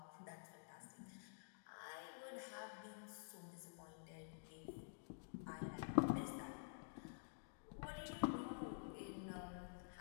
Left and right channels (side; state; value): right; silent; digital silence